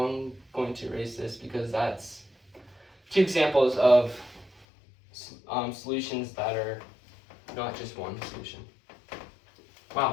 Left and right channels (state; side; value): drops out; right; at 4.7 s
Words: going to erase this because that's 2 examples of solutions that are not just one solution.